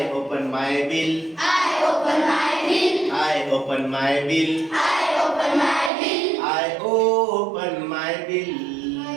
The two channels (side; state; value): left; drops out; at 5.9 s